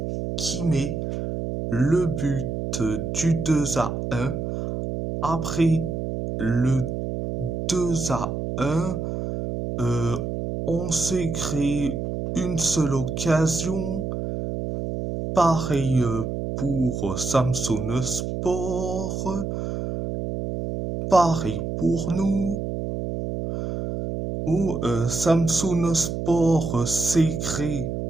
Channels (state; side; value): noise; right; hum, 4 dB below the sound